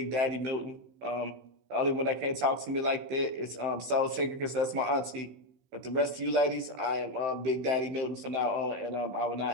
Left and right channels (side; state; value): left; late; 15 ms